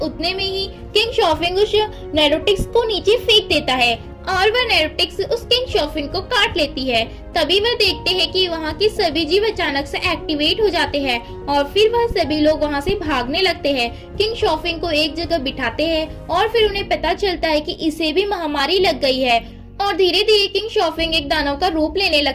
में ही किंग शॉफिंग उस नैरोटिक्स को नीचे फेंक देता है और वह नैरोटिक्स उस किंग शॉफिंग को काट लेती है। तभी वह देखते हैं कि वहाँ की सभी जीव अचानक से एक्टिवेट हो जाते हैं और फिर वह सभी लोग वहाँ से भागने लगते हैं। किंग शॉफिंग को एक जगह बिठाते हैं और फिर उन्हें पता चलता है कि इसे भी महामारी लग गई है और धीरे धीरे किंग शॉफिंग एक दानव का रूप लेने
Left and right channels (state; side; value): identical; both; correlation 1.00